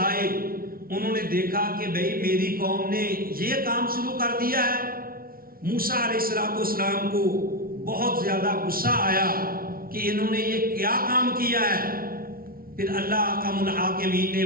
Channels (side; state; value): left; late; 0.43 ms